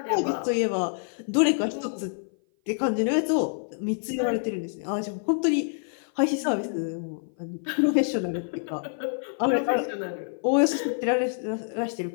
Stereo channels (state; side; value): silent; right; 56 dB below the other